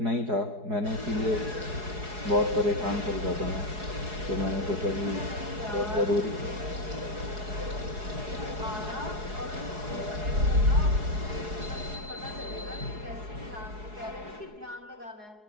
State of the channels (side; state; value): left; late; 4.7 ms